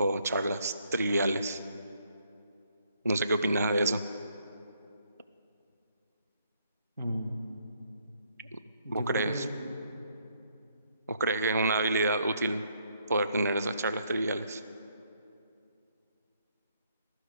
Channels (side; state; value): both; inverted; correlation -0.70